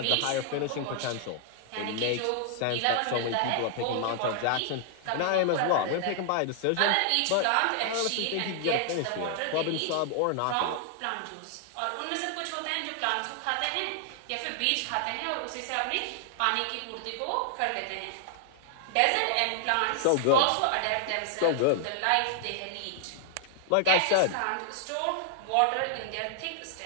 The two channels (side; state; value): both; different; correlation 0.00